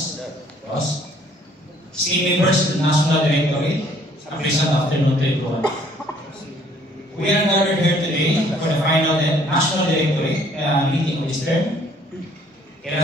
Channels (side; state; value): both; normal; correlation 0.60